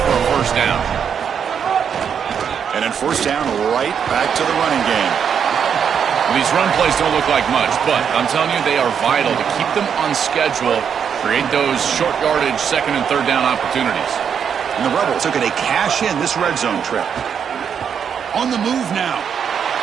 for a first down. And then first down right back to the running game. Well, these run plays don't look like much, but I'm telling you, they are vital to keep them on schedule, create those short yardage second and third down opportunities. And the Rebels are going to cash in this red zone trip. On the move now.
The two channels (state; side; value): quieter; left; 7.5 dB